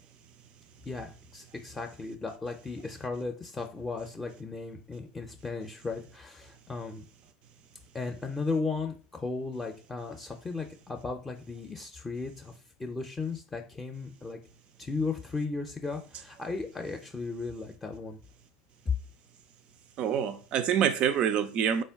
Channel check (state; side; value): normal; both; correlation 0.56